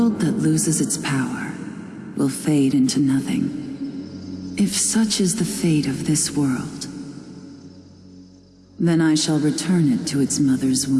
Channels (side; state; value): both; identical; correlation 1.00